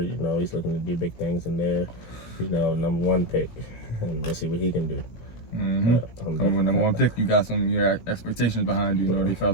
You know, he's looking to do big things in there. You know, #1 pick, and let's see what he can do. Mm-hmm. Coming with number 1 pick, you got your expectations behind you. You know, they felt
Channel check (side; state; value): right; late; 17 ms